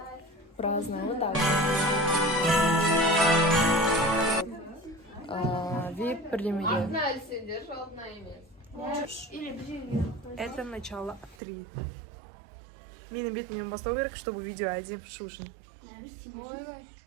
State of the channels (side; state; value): left; drops out; at 11.4 s